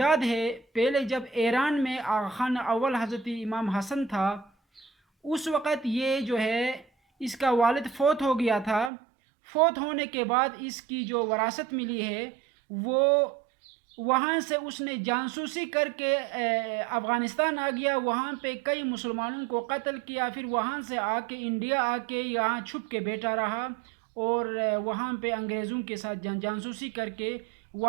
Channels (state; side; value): drops out; left; at 8.9 s